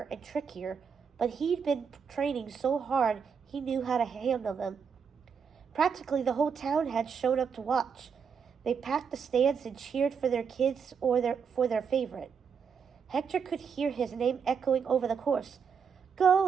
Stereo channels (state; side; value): quieter; left; 6.5 dB